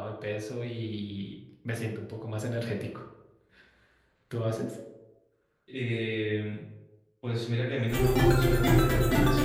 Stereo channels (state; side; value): identical; both; correlation 1.00